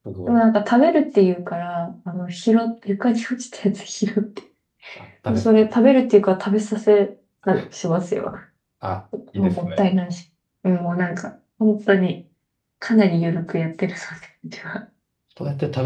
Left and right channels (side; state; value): both; identical; correlation 1.00